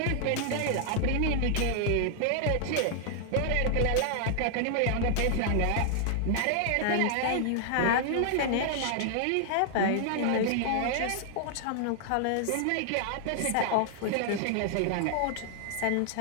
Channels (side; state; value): both; different; correlation -0.01